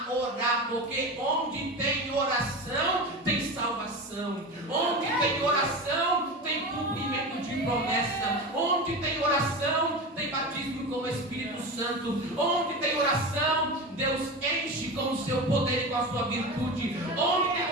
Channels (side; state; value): both; normal; correlation 0.26